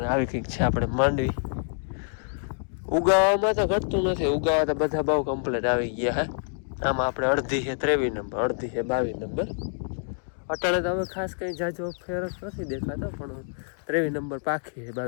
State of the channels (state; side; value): silent; right; digital silence